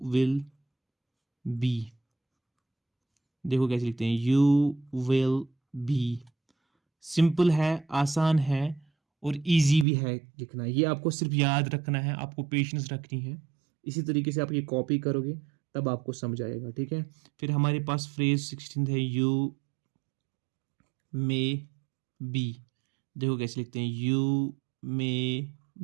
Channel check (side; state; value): left; drops out; at 9.9 s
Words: will be, देखो कैसे लिखते हैं यू विल बी। सिंपल है, आसान है और इजी भी है लिखना, ये आपको सिर्फ याद रखना है, आपको पेशेंस रखनी है। इसी तरीके से आप ये कॉपी करोगे तब आपको समझ आएगा, ठीक है। फिर हमारे पास फ्रेज 16 है यू मे बी, देखो कैसे लिखते हैं you may